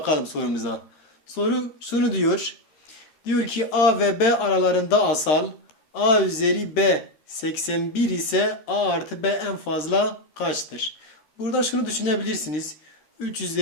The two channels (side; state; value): right; late; 13 ms